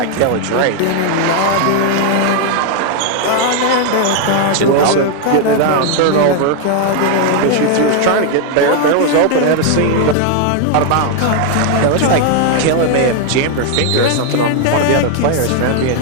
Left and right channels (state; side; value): different; both; correlation 0.00